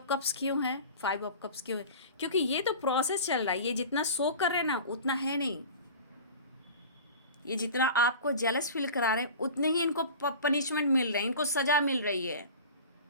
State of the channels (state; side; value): inverted; both; correlation -0.37